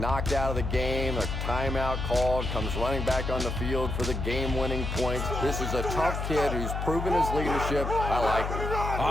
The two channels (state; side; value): noise; left; hum, 3 dB below the sound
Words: out of the game, a timeout called, comes running back on the field for the game-winning points. This is a tough kid who's proven his leadership. I like him.